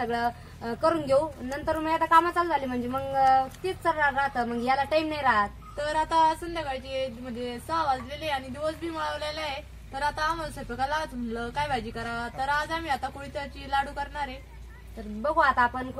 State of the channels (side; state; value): both; identical; correlation 1.00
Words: करून घेऊ, नंतर मग आता कामं चालू झाली म्हणजे मग तीच राहतं, मग याला टाइम नाही राहत। तर आता संध्याकाळची म्हणजे 6 वाजलेले आणि दिवस बी माळवलेला आहे। तर आता आम्हाला स्वयंपाकाला म्हणलं काय भाजी करा, तर आज आम्ही आता कुळथाची लाडू करणार आहे। तर बघू आता आपण